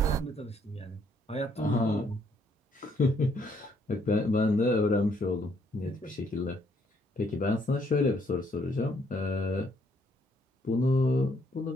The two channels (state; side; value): normal; both; correlation 0.69